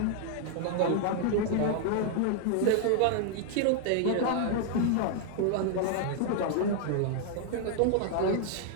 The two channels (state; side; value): different; both; correlation 0.00